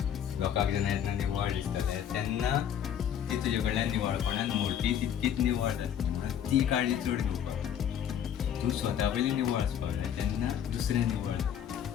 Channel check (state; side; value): quieter; right; 9.3 dB